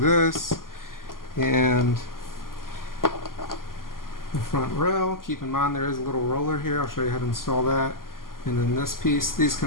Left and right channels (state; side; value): late; right; 0.91 ms